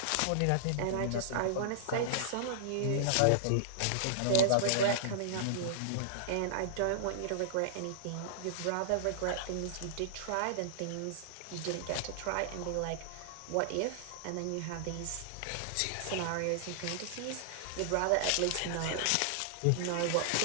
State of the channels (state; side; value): different; both; correlation -0.01